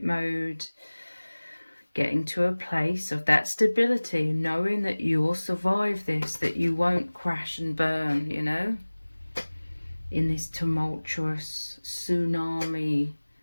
mode. Getting to a place of that stability, knowing that you will survive this, that you won't crash and burn, you know, in this tumultuous tsunami,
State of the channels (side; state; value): both; inverted; correlation -1.00